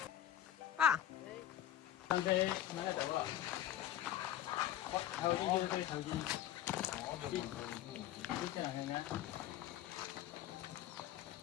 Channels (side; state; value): right; quieter; 11.6 dB